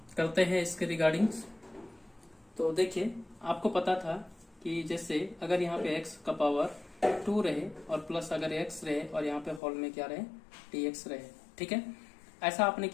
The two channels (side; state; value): right; drops out; at 9.6 s